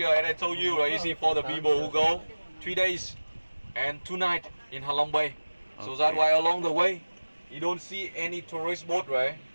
and I told you, right, you see for the people who go 3 days and 2 nights in Halong Bay. So that's why along the way, you don't see any tourist boat, right?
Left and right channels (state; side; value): inverted; both; correlation -1.00